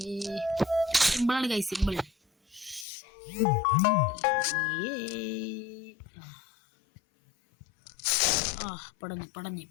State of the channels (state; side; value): drops out; right; at 2.9 s